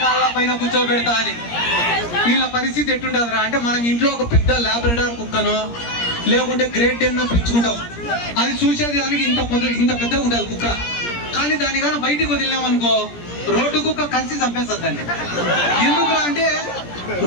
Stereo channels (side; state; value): right; late; 17 ms